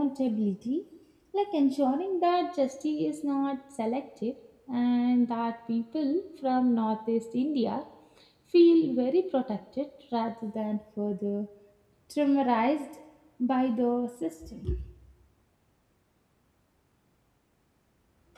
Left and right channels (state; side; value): identical; both; correlation 1.00